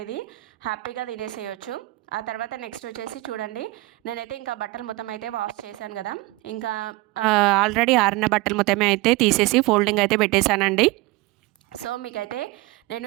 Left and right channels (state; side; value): quieter; left; 20.8 dB